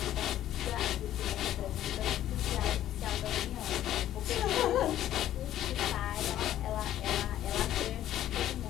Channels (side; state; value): right; quieter; 12.4 dB